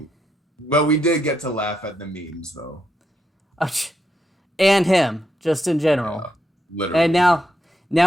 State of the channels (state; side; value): normal; both; correlation 0.80